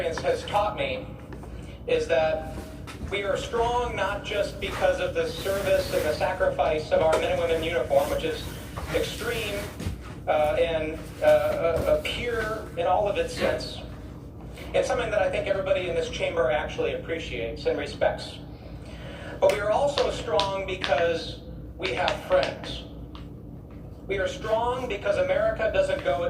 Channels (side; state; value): both; identical; correlation 1.00